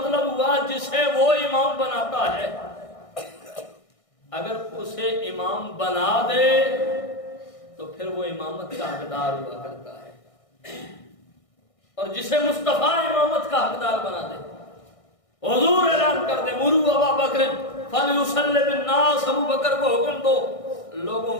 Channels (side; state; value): right; late; 1.6 ms